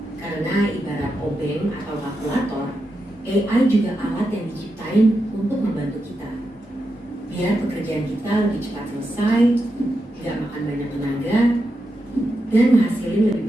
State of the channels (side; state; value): both; normal; correlation 0.87